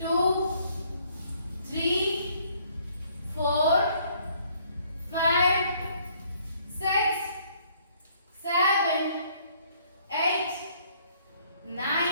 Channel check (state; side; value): inverted; both; correlation -0.63